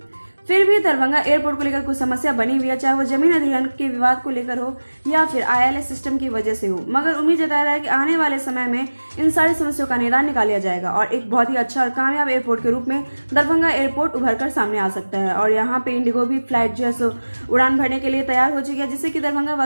फिर भी दरभंगा एयरपोर्ट को लेकर कुछ समस्या बनी हुई है, चाहे वो जमीन अधिग्रहण के विवाद को लेकर हो या फिर ILS सिस्टम की वजह से हो, मगर उम्मीद जताया रहा है कि आने वाले समय में इन सारी समस्याओं का निदान निकाल लिया जाएगा और एक बहुत ही अच्छा और कामयाब एयरपोर्ट के रूप में दरभंगा एयरपोर्ट उभर कर सामने आ सकता है। और यहाँ पे इंडिगो भी फ्लाइट जो है सो उड़ान भरने के लिए तैयार हो चुकी है, जिससे कि दरभंगा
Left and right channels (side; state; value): both; inverted; correlation -1.00